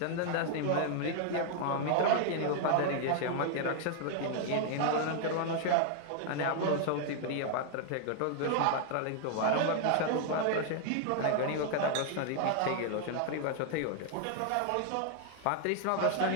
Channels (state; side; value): different; both; correlation 0.00